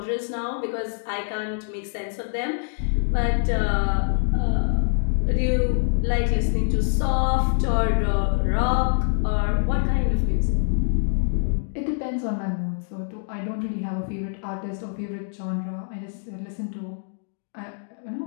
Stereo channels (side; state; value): right; silent; digital silence